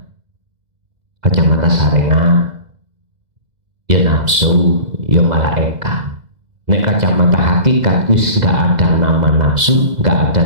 ya nafsu, ya malaikat. Nek kacamata hakikat wis nggak ada nama nafsu, nggak ada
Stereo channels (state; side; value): late; left; 2.0 ms